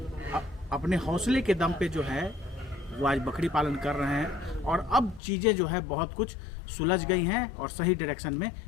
अपने हौसले के दम पे जो है वो आज बकरी पालन कर रहे हैं, और अब चीज़ें जो है बहुत कुछ सुलझ गई हैं और सही डायरेक्शन में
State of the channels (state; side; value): drops out; right; at 5.2 s